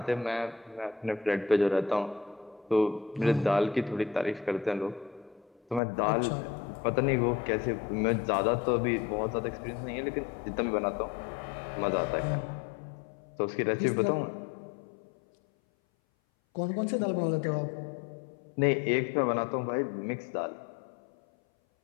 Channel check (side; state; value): right; drops out; at 5.8 s